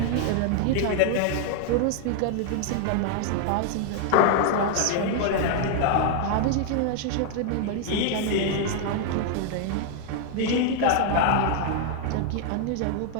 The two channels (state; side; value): different; both; correlation 0.00